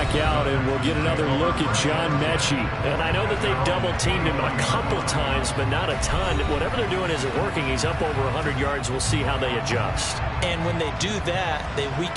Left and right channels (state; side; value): identical; both; correlation 1.00